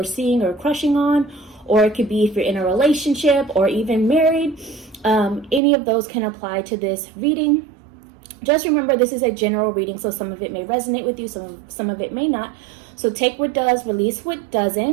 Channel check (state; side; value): drops out; left; at 5.6 s